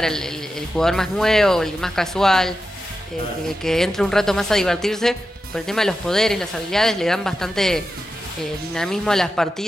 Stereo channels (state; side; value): normal; both; correlation 0.91